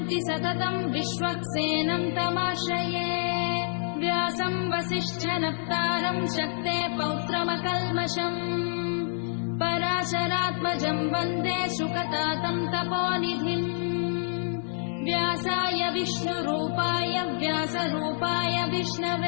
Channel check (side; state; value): right; silent; 57 dB below the other